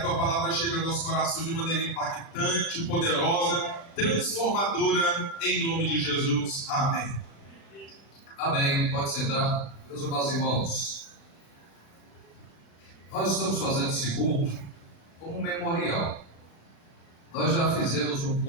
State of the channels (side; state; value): right; late; 36 ms